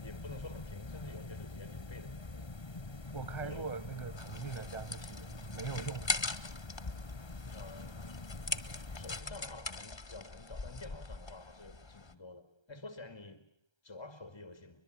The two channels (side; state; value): right; late; 1.3 ms